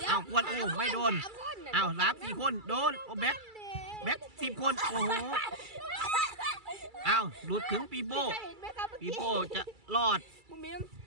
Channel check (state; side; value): late; left; 2.3 ms